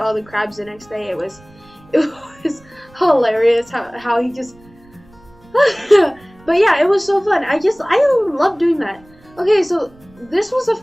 all the crabs the next day. It was hilarious how he just. But yeah, it was so fun. I love doing that. Okay, so this was a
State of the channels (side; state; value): right; noise; rumble, 27 dB below the sound